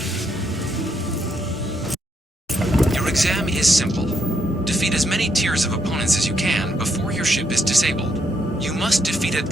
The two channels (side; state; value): both; normal; correlation 0.76